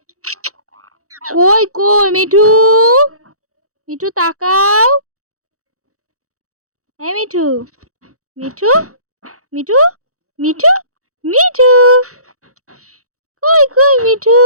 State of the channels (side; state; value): left; late; 0.65 ms